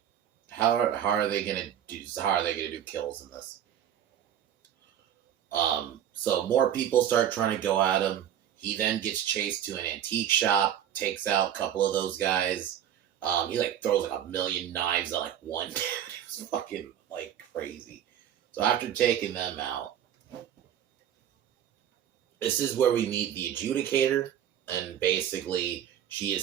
how are they gonna do kills in this? So more people start trying to go at him. He then gets chased to an antique shop, takes out a couple of those guys. He like throws like 1,000,000 knives at like one dude. It was fucking like crazy. So after taking them out, this is where we meet the adjudicator, and basically she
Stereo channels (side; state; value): left; quieter; 10.2 dB